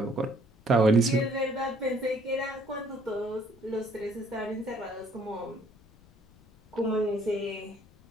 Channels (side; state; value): left; noise; rumble, 27 dB below the sound